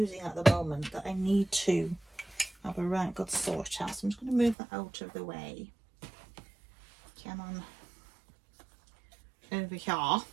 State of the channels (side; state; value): left; drops out; at 4.5 s